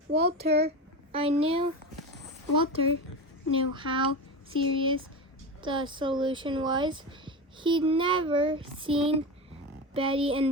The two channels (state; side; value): normal; both; correlation 0.22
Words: Walter knew how serious the solution was. He'd never seen Betty